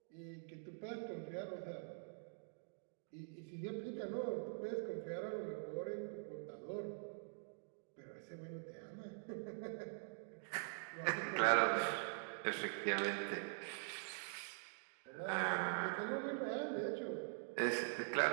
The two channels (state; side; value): silent; left; digital silence